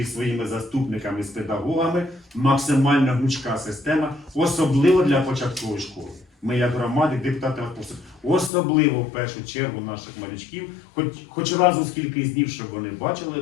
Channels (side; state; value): right; drops out; at 8.5 s